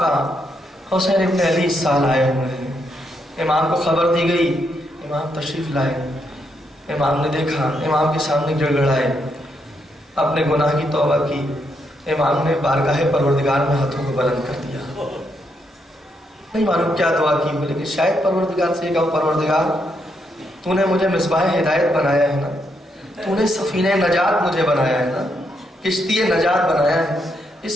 حسین ابن علی اس سال آئے ہوئے ہیں. امام کو خبر دی گئی, امام تشریف لائے. امام نے دیکھا, امام کے سامنے گڑگڑائے, اپنے گناہ کی توبہ کی. امام نے بارگاہ پروردگار میں ہاتھوں کو بلند کر دیا. نہیں معلوم کیا دعا کی, بولے کہ شاید پروردگار سے کہو پروردگار تو نے مجھے مصباح ہدایت بنایا ہے نا, تو نے سفینہ نجات مجھے بنایا ہے نا, کشتی نجات بنایا ہے.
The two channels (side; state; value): both; normal; correlation 0.78